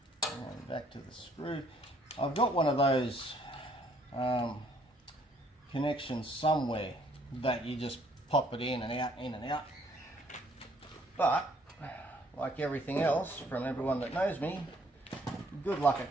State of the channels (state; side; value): normal; both; correlation 0.64